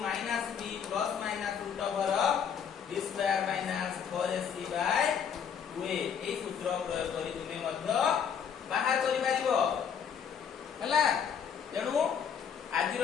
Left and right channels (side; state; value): right; quieter; 7.5 dB